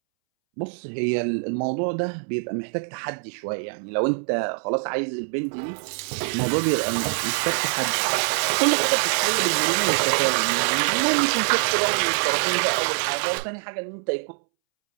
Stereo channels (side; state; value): left; silent; 63 dB below the other